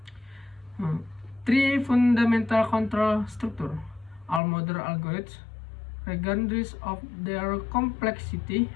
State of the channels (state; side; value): drops out; right; at 4.4 s